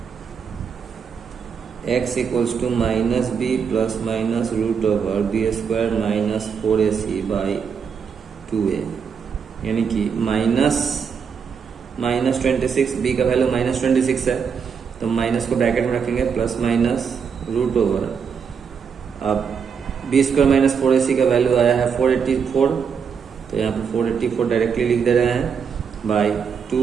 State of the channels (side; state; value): left; quieter; 6.5 dB